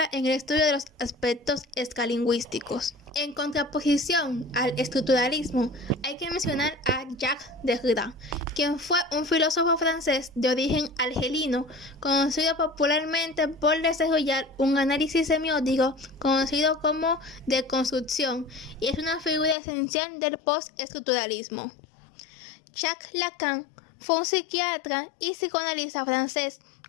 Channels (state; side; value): drops out; right; at 19.6 s